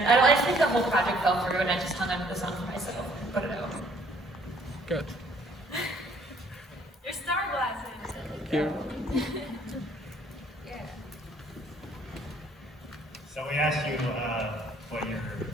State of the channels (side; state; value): both; normal; correlation 0.61